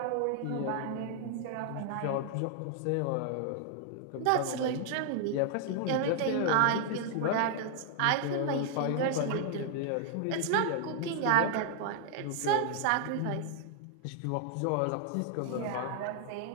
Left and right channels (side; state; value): both; different; correlation 0.00